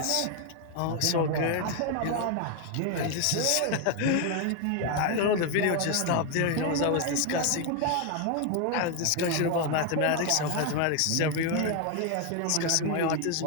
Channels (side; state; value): both; different; correlation 0.01